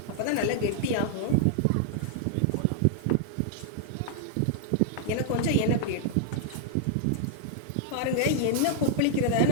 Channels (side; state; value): both; different; correlation -0.01